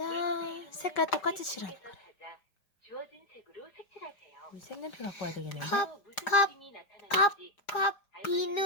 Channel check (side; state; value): right; late; 4.9 ms